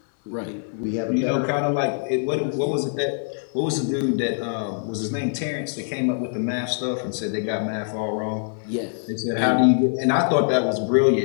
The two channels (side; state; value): right; silent; digital silence